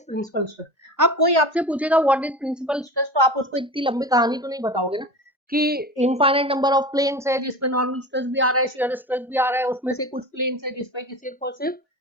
principal stress. अब कोई आपसे पूछेगा what is principal stress, तो आप उसको इतनी लंबी कहानी तो नहीं बताओगे ना कि इनफाइनाइट नंबर ऑफ प्लेन्स है जिसपे नॉर्मल स्ट्रेस भी आ रहा है, शेयर स्ट्रेस भी आ रहा है, उसमें से कुछ प्लेन्स है जिसपे कि सिर्फ और सिर्फ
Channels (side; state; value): both; normal; correlation 0.31